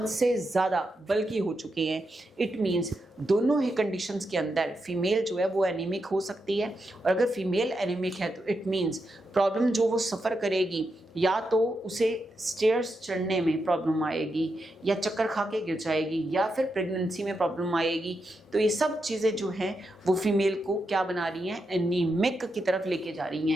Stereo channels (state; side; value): normal; both; correlation 0.85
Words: से ज़्यादा बल्कि हो चुके हैं। इट मीन्स दोनों ही कंडीशंस के अंदर फीमेल जो है वो एनीमिक हो सकती है। और अगर फीमेल एनीमिक है तो इट मीन्स प्रॉब्लम जो वो सफ़र करेगी, या तो उसे स्टेयर्स चढ़ने में प्रॉब्लम आएगी, या चक्कर खा के गिर जाएगी, या फिर प्रेगनेंसी में प्रॉब्लम आएगी। तो ये सब चीज़ें जो हैं वो फीमेल को क्या बना रही हैं, एनीमिक की तरफ लेके जा रही